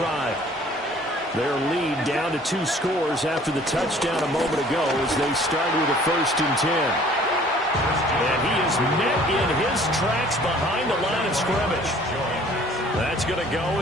Their lead down to 2 scores after the touchdown a moment ago as they start with a 1st and 10. And he is met in his tracks behind the line of scrimmage. That's going to go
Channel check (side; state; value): both; normal; correlation 0.54